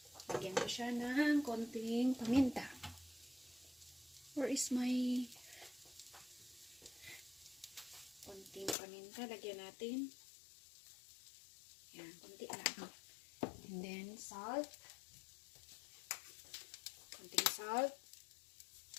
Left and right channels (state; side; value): drops out; right; at 8.8 s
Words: Lagyan ko siya ng konting paminta. Where is my... konting paminta, lagyan natin. Yan, konti lang. And then, salt. Konting salt.